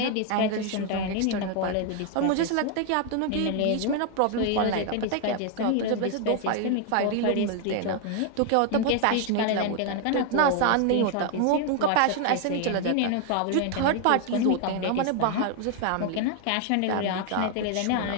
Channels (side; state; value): both; different; correlation 0.00